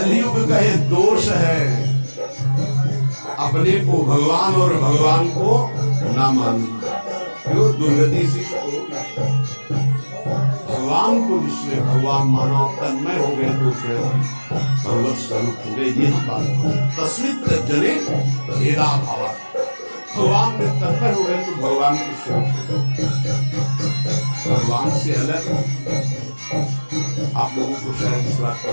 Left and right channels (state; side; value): inverted; both; correlation -1.00